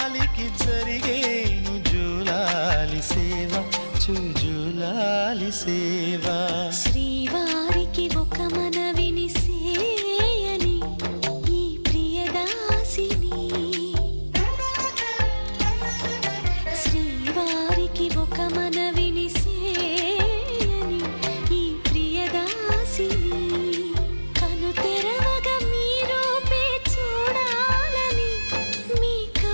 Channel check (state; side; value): inverted; both; correlation -1.00